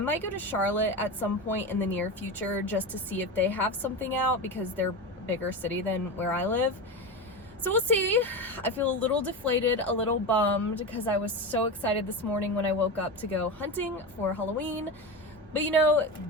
go to Charlotte at some point in the near future just to see if they have something out because they're a bigger city than where I live. So we'll see. I feel a little deflated, a little bummed because I was so excited this morning when I woke up to go hunting for Halloween. But you know,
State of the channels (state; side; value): normal; both; correlation 0.22